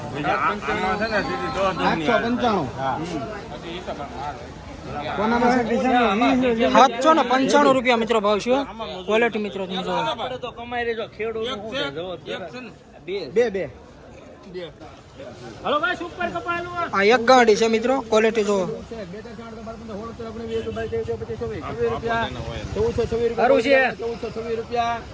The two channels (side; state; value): both; identical; correlation 1.00